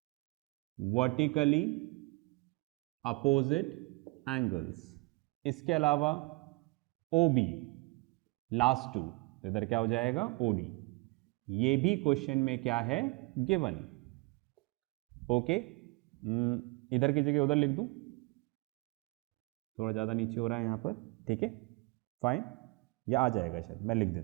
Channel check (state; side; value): quieter; left; 25.8 dB